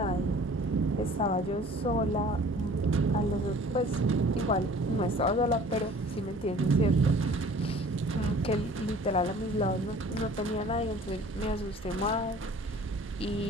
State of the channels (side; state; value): both; normal; correlation 0.49